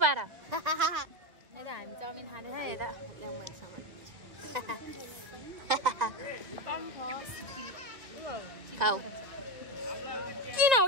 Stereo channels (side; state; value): left; late; 2.1 ms